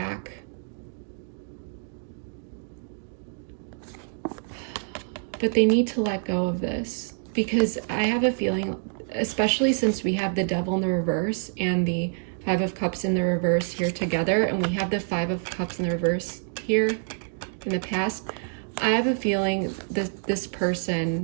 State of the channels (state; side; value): silent; left; digital silence